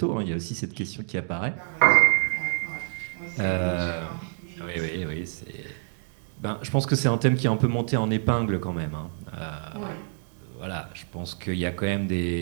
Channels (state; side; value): silent; left; digital silence